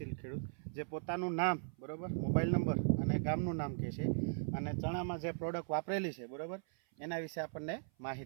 ખેડૂત જે પોતાનું નામ, બરાબર, મોબાઈલ નંબર અને ગામનું નામ કહે છે અને ચણામાં જે પ્રોડક્ટ વાપરેલી છે, બરાબર, એના વિશે આપણને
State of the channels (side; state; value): left; silent; 52 dB below the other